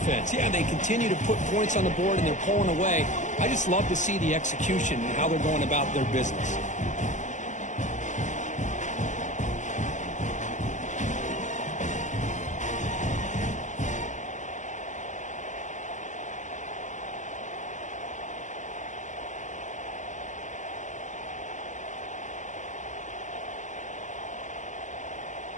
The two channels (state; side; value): late; right; 0.35 ms